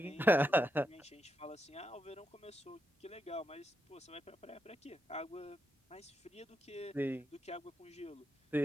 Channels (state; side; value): normal; both; correlation 0.83